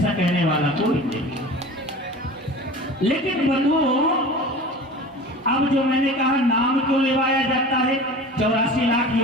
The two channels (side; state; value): both; normal; correlation 0.37